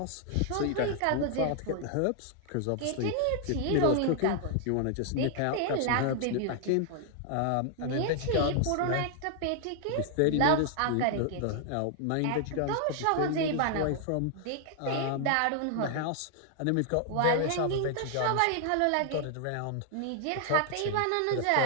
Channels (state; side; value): different; both; correlation 0.00